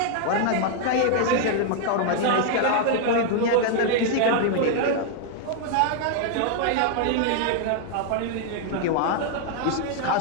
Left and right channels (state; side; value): different; both; correlation 0.00